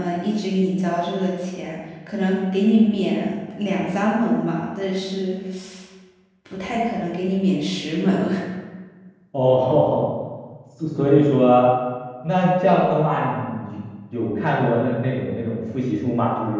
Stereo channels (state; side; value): identical; both; correlation 1.00